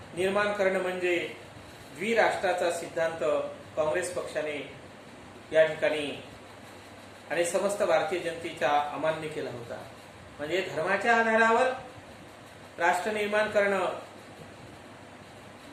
निर्माण करणं म्हणजे द्विराष्ट्राचा सिद्धांत काँग्रेस पक्षाने या ठिकाणी आणि समस्त भारतीय जनतेचा अमान्य केला होता. म्हणजे धर्माच्या आधारावर राष्ट्र निर्माण करणं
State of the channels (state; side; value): identical; both; correlation 1.00